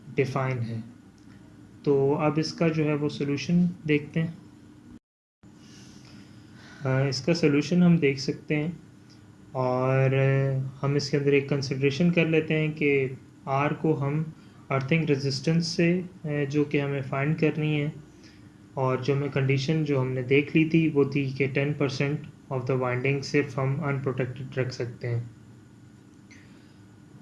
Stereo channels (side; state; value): both; identical; correlation 1.00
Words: डिफ़ाइन है। तो अब इसका जो है वो सोल्यूशन देखते हैं। इसका सोल्यूशन हम देख सकते हैं और हम इसके अंदर एक कंसिड्रेशन कर लेते हैं कि आर को हम अर्थिंग रेजिस्टेंस से जो कि हमें फाइंड करनी है, और जो हमें कंडीशन जो हमने देख ली थी वो थी कि 10% ऑफ द वाइंडिंग सिर्फ हम अनप्रोटेक्टेड रख सकते हैं।